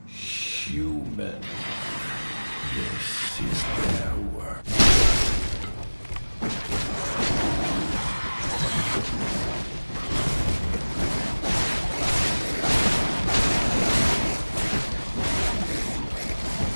Human. This is their work.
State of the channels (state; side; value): inverted; both; correlation -1.00